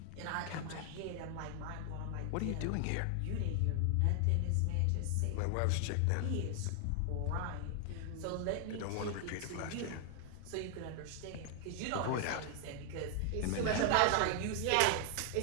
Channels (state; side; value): different; both; correlation 0.00